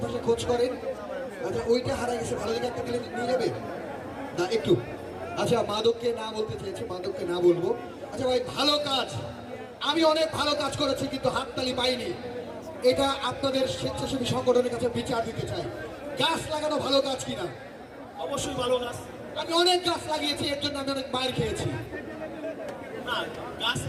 খোঁজ করেন। আচ্ছা ওইটা হারিয়ে গেছে, ভালো জায়গা একটা দিলে নিয়ে যাবে না একটু? আচ্ছা মাদককে না বলতে চেয়েছি, মাদককে না বলবো। আচ্ছা ভাই ভালো কাজ, আমি অনেক ভালো কাজ করেছি কিন্তু হাততালি পাইনি। এটা আপনাদের স্বেচ্ছাসেবী সংগঠনের কাছে বিচার দিতে চাই। গাছ লাগানো ভালো কাজ কিনা? অবশ্যই ভালো কাজ। আমি অনেক গাছ লাগিয়েছি, এর জন্য আমি অনেক মার খেয়েছি। না, গাছ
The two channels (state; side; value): identical; both; correlation 1.00